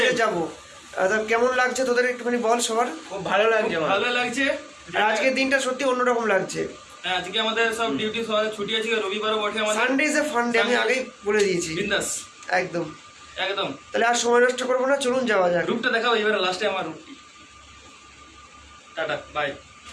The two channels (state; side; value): identical; both; correlation 1.00